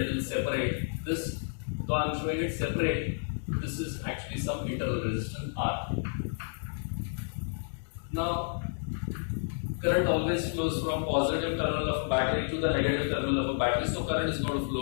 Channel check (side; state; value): right; silent; digital silence